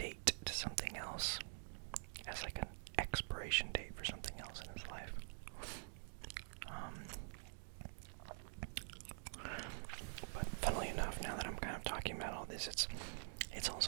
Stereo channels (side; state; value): left; silent; digital silence